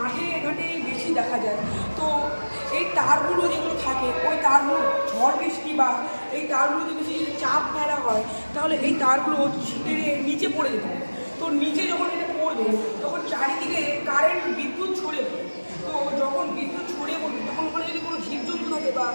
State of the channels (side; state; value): both; inverted; correlation -1.00